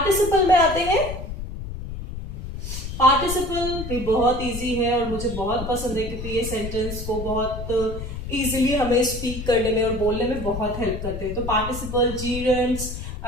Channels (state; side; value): noise; left; rumble, 8 dB below the sound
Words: में आते हैं। पार्टिसिपल भी बहुत इजी है और मुझे बहुत पसंद है, क्योंकि ये सेंटेंस को बहुत इजीली हमें स्पीक करने में और बोलने में बहुत हेल्प करते हैं। तो पार्टिसिपल, जीरेंट्स,